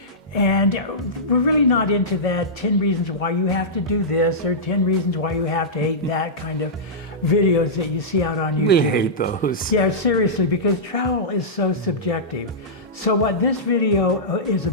And we're really not into that 10 reasons why you have to do this or 10 reasons why you have to hate that kind of videos that you see out on YouTube. We hate those. Yeah, seriously, because travel is so subjective. So what this video is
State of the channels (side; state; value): both; normal; correlation -0.14